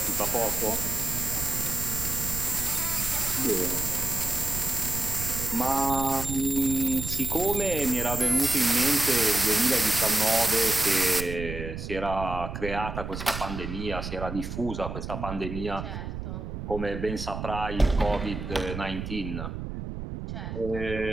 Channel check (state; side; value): noise; right; rumble, 7 dB below the sound